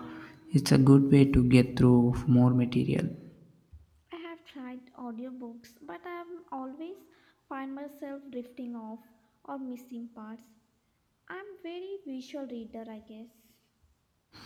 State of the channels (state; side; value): identical; both; correlation 1.00